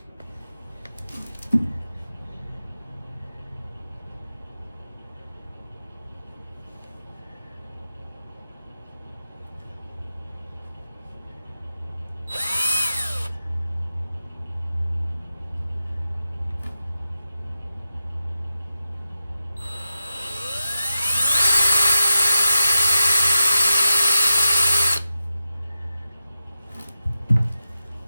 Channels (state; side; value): inverted; both; correlation -0.92